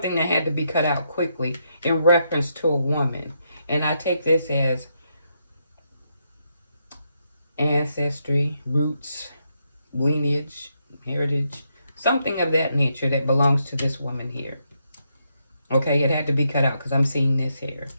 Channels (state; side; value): inverted; both; correlation -0.80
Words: that had to be cut out quickly in reference to a woman. And I take this as ancestry, roots, lineage, heritage, something of that nature that belongs to this woman here. Okay, it had to be cut out because I'm seeing this here.